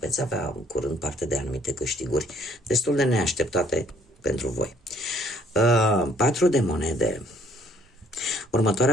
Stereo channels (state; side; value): normal; both; correlation 0.61